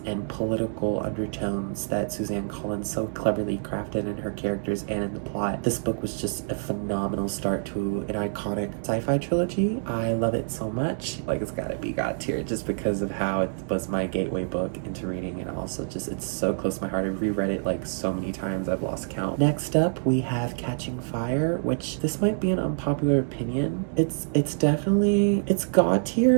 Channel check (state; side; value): silent; left; digital silence